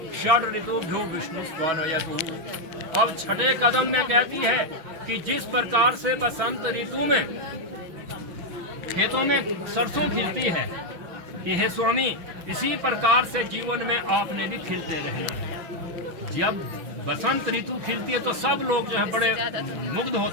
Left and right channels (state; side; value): late; left; 6.2 ms